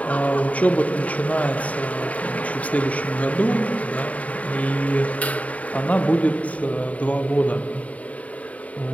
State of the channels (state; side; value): late; right; 0.069 ms